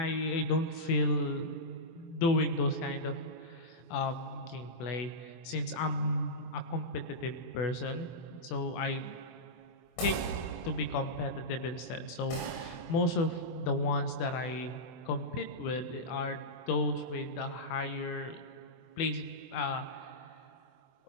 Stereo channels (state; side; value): late; right; 24 ms